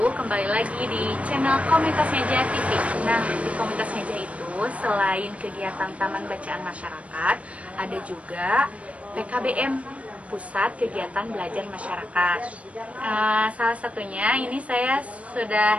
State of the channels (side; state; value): left; late; 0.064 ms